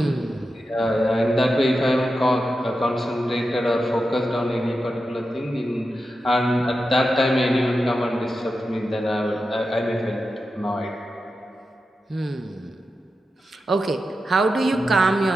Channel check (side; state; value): both; normal; correlation 0.90